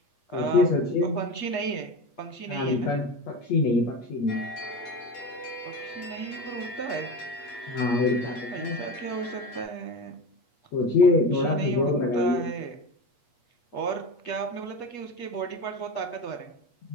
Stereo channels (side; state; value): right; late; 8.4 ms